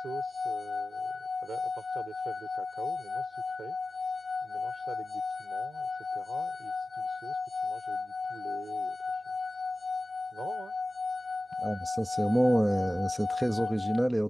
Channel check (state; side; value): normal; both; correlation 0.96